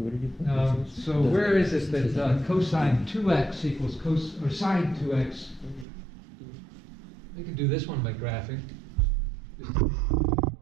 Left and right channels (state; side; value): drops out; left; at 5.9 s